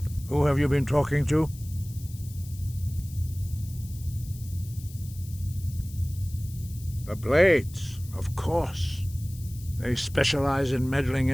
Who have you been talking to? The Blades, of course. They specialize in meddling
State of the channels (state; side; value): noise; left; hiss, 19 dB below the sound